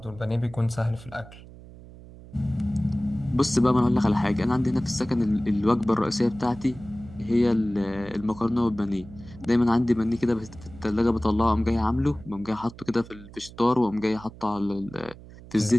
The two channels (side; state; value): right; noise; hum, 18 dB below the sound